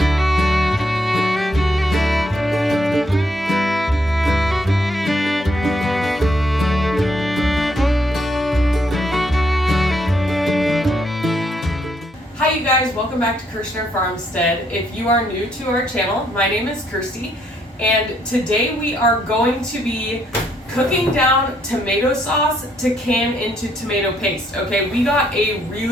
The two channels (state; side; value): normal; both; correlation 0.72